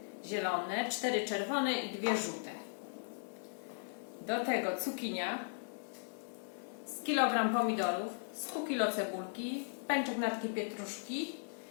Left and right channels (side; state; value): right; silent; digital silence